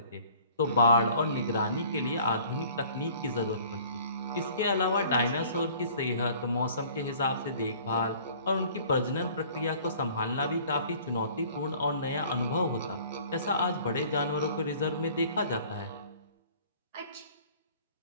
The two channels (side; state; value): both; inverted; correlation -0.52